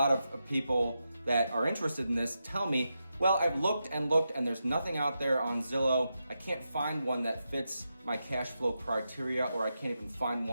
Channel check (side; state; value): both; inverted; correlation -0.87